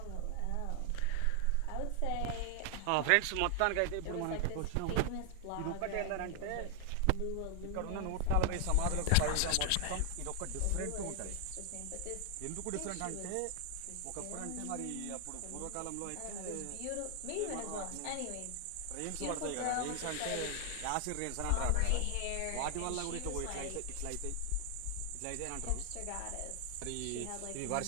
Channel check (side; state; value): both; different; correlation 0.00